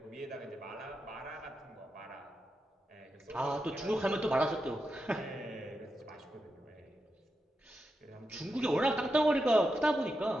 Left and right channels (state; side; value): normal; both; correlation 0.87